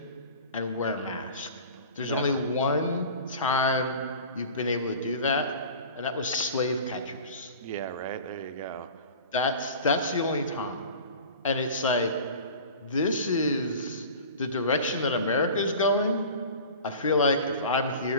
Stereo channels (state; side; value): inverted; both; correlation -0.39